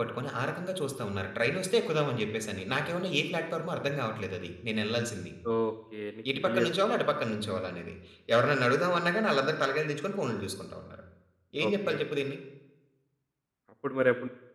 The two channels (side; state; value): both; identical; correlation 1.00